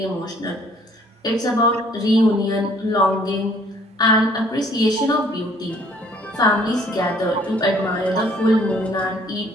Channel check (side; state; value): both; normal; correlation 0.59